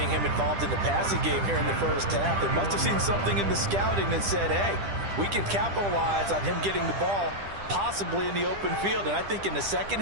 him involved in the passing game here in the 1st half. They must have seen something in the scouting that said, hey, we can capitalize on him getting the ball possibly in the open field. And I think in the 2nd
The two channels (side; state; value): left; late; 10 ms